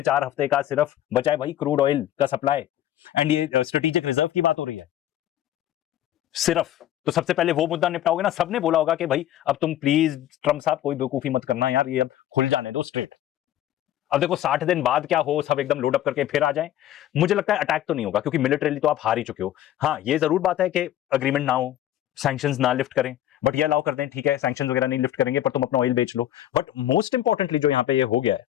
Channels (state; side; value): quieter; right; 12.4 dB